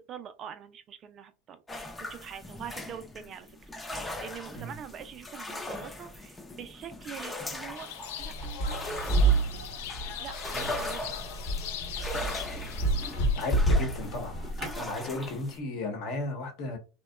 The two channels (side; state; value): both; normal; correlation 0.30